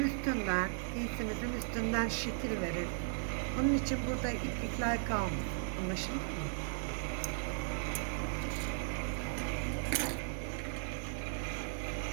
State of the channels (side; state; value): left; silent; 53 dB below the other